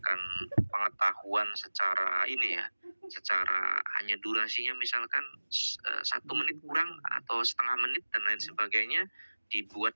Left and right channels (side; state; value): both; inverted; correlation -1.00